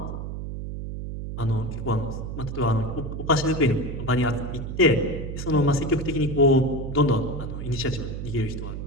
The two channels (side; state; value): right; noise; hum, 6 dB below the sound